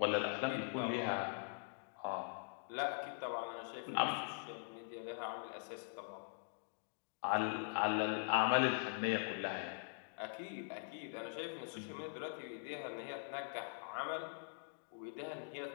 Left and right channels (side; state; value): right; silent; digital silence